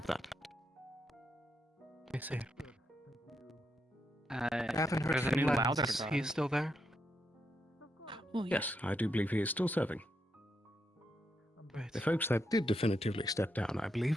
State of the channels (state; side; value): normal; both; correlation 0.82